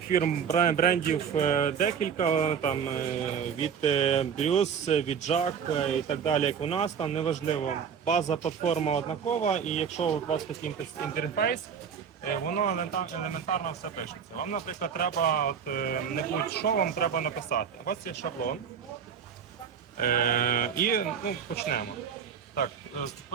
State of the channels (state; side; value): quieter; left; 7.3 dB